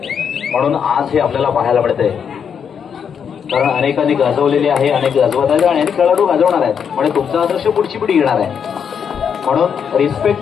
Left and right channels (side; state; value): right; quieter; 7.3 dB